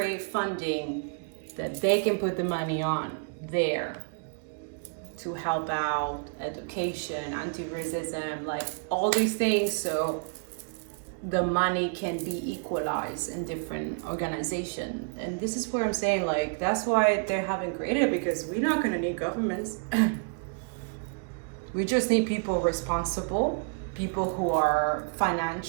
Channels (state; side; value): quieter; left; 39.4 dB